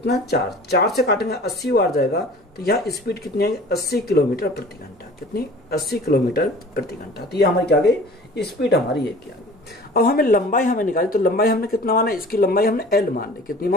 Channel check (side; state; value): both; normal; correlation 0.45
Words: 4 से काटेंगे 80 बार जाएगा, तो यहाँ स्पीड कितनी आएगी, 80 किलोमीटर प्रति घंटा, कितनी 80 किलोमीटर प्रति घंटा। तो ये हमारी क्या गई, स्पीड हमारी ये क्या गई। अब हमें लंबाई हमें निकाली, तो लंबाई हमने कितना माना, इसकी लंबाई हमने एल मान ली, कितनी